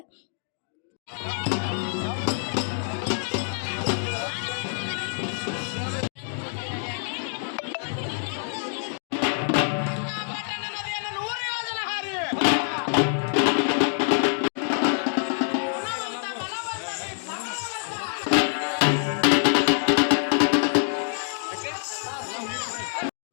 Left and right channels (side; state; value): right; silent; digital silence